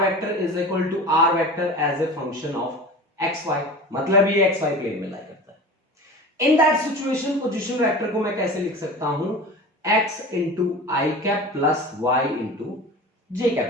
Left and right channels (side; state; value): both; normal; correlation 0.34